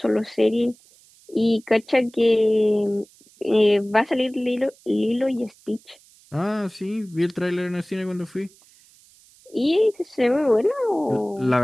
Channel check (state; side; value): noise; right; hiss, 28 dB below the sound